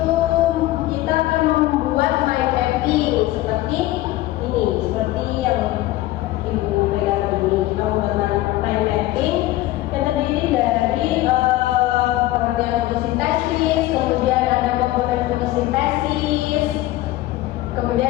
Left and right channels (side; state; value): right; quieter; 16.4 dB